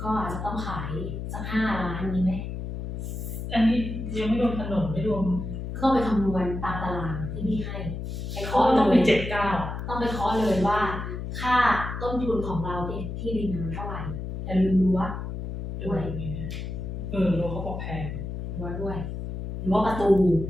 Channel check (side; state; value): left; noise; hum, 6 dB below the sound